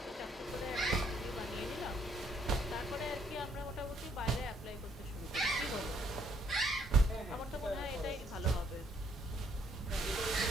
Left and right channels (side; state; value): both; normal; correlation 0.67